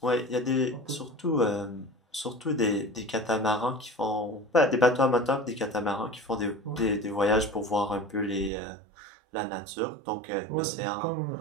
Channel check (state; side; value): drops out; left; at 8.5 s